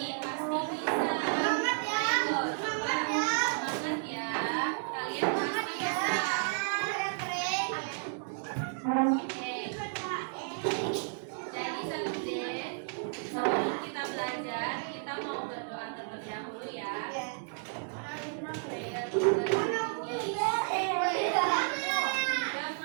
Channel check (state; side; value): silent; left; digital silence